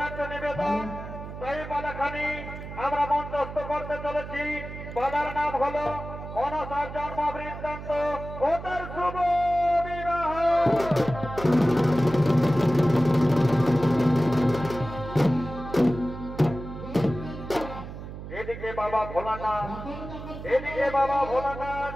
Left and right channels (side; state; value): right; noise; hum, 10 dB below the sound